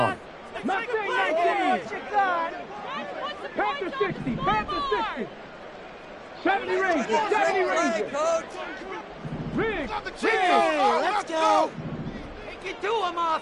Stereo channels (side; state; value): both; identical; correlation 1.00